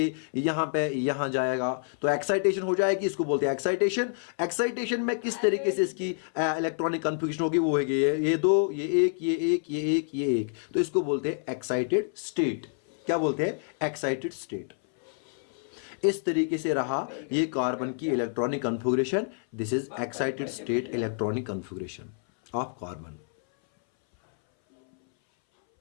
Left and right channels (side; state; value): right; silent; 59 dB below the other